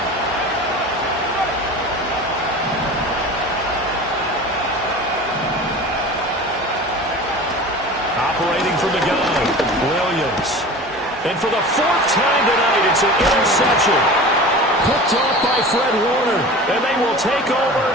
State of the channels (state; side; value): normal; both; correlation 0.36